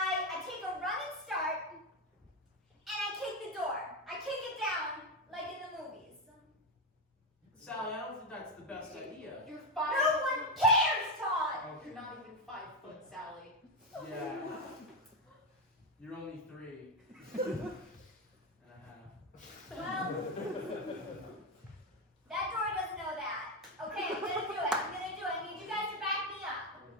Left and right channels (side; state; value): both; normal; correlation 0.10